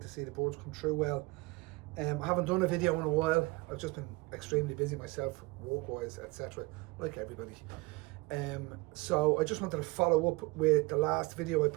to see the boards come through well. I haven't done a video in a while. I've just been extremely busy myself, work-wise, etc., like everybody. So I just wanted to follow up with the last video I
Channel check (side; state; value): left; quieter; 23.9 dB